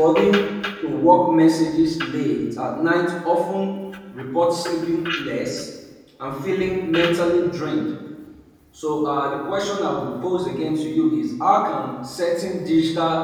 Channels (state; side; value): identical; both; correlation 1.00